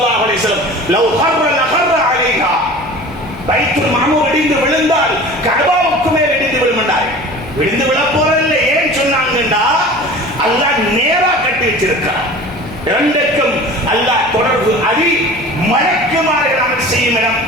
அலைஹி வஸல்லம் லவ் ஹர்ர லஹர்ர அலைஹா, பைத்துல் மஅமூர் இடிந்து விழுந்தால் கஅபாவுக்கு மேல் இடிந்து விழுந்தார்கள். விழுந்து விழ போறதில்லை. ஏன் சொன்னாங்கண்டா அல்லாஹ் நேரா கட்டி வச்சிருக்கிறார். இரண்டுக்கும் அல்லாஹ் தொடர்பு. அது மலக்குமார்கள் அமல் செய்யும் இடம்,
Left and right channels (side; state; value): both; normal; correlation 0.40